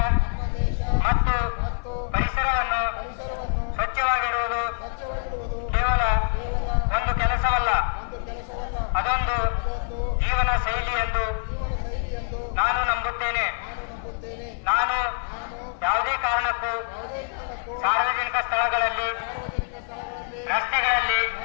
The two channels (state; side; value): silent; right; 58 dB below the other